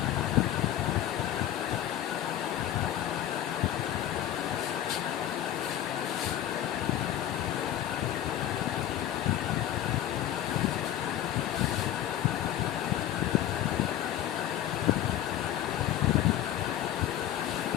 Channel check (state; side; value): quieter; right; 11.9 dB